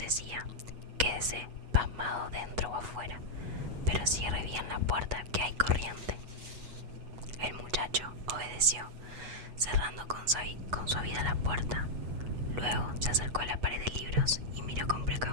«Quédese pasmado dentro o afuera, pero cierre bien la puerta que hay corriente». El muchacho obedeció, cerrando con suavidad la puerta. Luego se acercó a la pared de libros y miró con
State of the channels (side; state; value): left; late; 8.1 ms